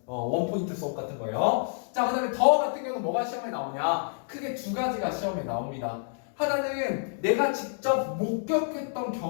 원포인트 수업 같은 거예요. 자, 그 다음에 더 같은 경우는 뭐가 시험에 나오냐? 크게 두 가지가 시험에 나옵니다. 하나는 내가 직접 목격했던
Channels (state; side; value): silent; right; digital silence